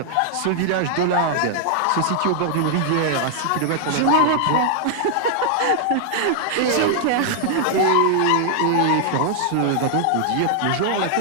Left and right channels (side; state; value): both; different; correlation 0.00